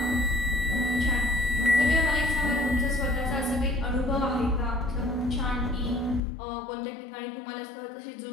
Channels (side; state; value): right; drops out; at 6.2 s